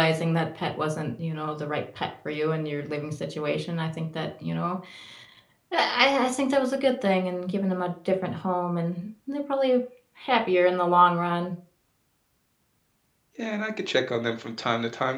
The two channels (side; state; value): both; identical; correlation 1.00